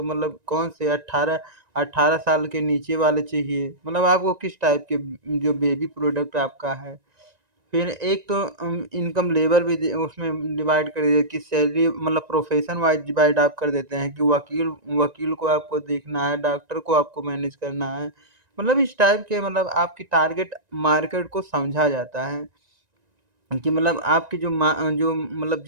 मतलब कौन से 18 साल के नीचे वाले चाहिए। मतलब आपको किस टाइप के जो बेबी प्रोडक्ट आपका है। फिर एक तो इनकम लेवल भी उसमें डिवाइड कर दिया कि सैलरी मतलब प्रोफेशन वाइज डिवाइड आप कर देते हैं कि वकील वकील को आपको देखना है, डॉक्टर को आपको मैनेज करना है। मतलब इस टाइप के मतलब आपकी टारगेट मार्केट को समझा जाता है कि मतलब आपकी जो मतलब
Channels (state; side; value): late; left; 1.9 ms